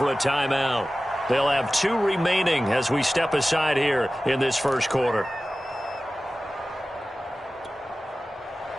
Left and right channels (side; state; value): both; normal; correlation 0.96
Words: a timeout. They'll have 2 remaining as we step aside here in this first quarter.